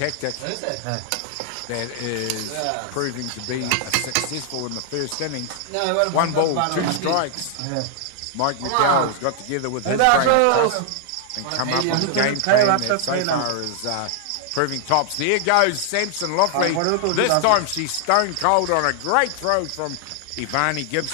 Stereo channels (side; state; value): both; different; correlation 0.00